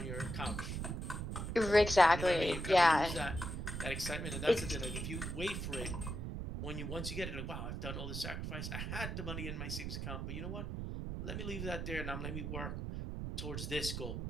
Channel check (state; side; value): noise; right; rumble, 4 dB below the sound